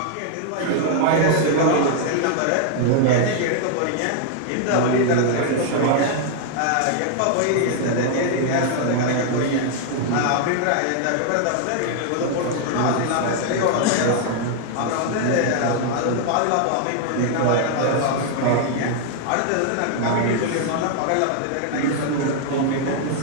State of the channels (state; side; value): different; both; correlation 0.00